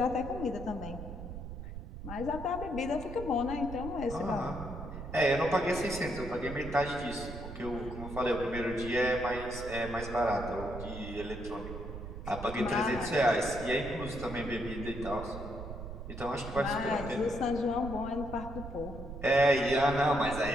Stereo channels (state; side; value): noise; right; rumble, 9 dB below the sound